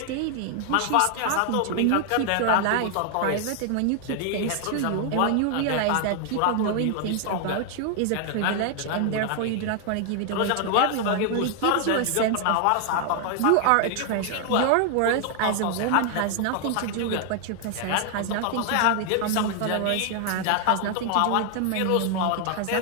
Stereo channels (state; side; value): different; both; correlation 0.00